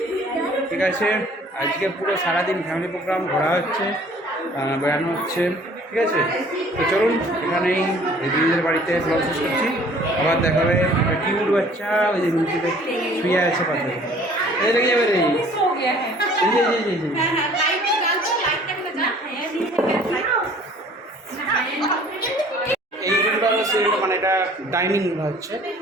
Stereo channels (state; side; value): normal; both; correlation 0.53